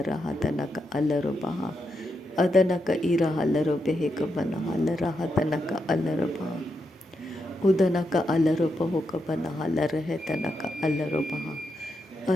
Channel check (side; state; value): both; normal; correlation 0.84